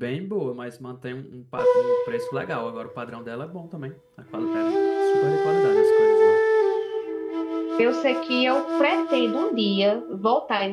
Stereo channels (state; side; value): identical; both; correlation 1.00